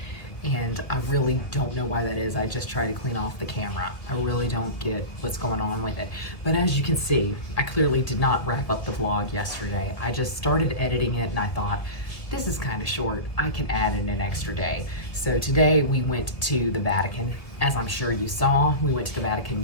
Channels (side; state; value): right; late; 1.7 ms